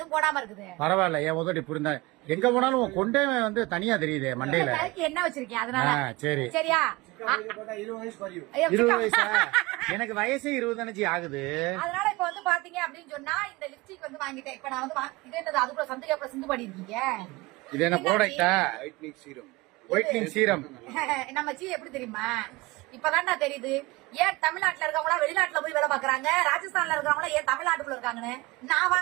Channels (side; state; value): left; quieter; 22.4 dB